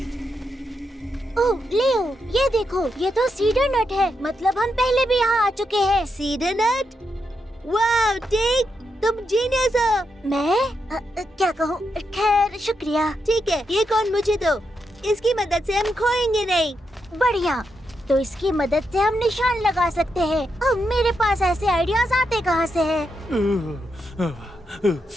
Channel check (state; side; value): normal; both; correlation 0.83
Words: ओह लियो, ये देखो, ये तो सीडर नट है। मतलब हम पहले भी यहाँ आ चुके हैं। सीडर नट? वाह टिग, तुम जीनियस हो। मैं क्या कहूँ? खैर शुक्रिया। ठीक है, ये कौन मुझे दो। इसकी मदद से हम खोएंगे नहीं। बढ़िया, तो इसकी मदद से हम निशान लगा सकते हैं। अब मेरे पास ऐसे आइडियाज आते कहाँ से हैं?